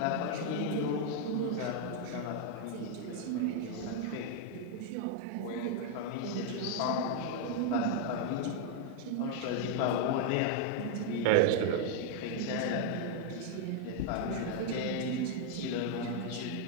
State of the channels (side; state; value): both; different; correlation 0.00